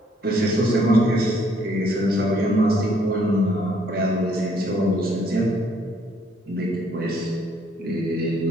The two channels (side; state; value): both; normal; correlation 0.66